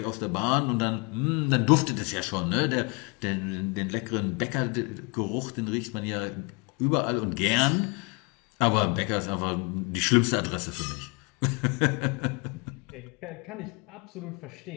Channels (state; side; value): quieter; right; 31.4 dB